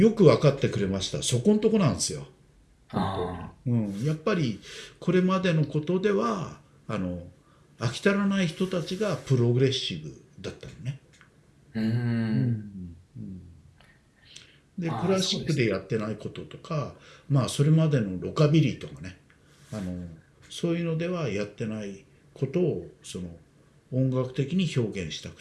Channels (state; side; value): identical; both; correlation 1.00